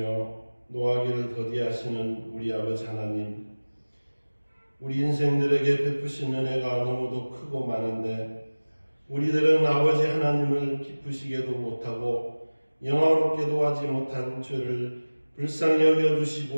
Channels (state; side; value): inverted; both; correlation -1.00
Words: 노하기를 더디하시는 우리 아버지 하나님, 우리 인생들에게 베푸신 은혜가 너무도 크고 많은데 우리들은 아버지 하나님을 기쁘시게도 못하고 영화롭게도 하지 못한 죄를 불쌍히